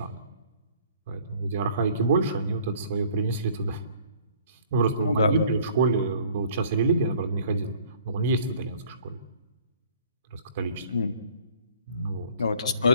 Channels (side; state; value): both; inverted; correlation -0.54